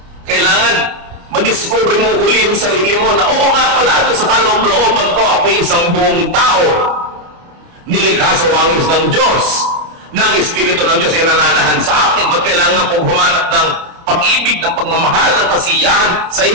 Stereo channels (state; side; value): late; left; 29 ms